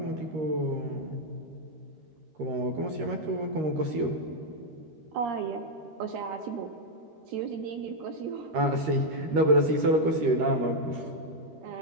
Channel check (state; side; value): late; left; 13 ms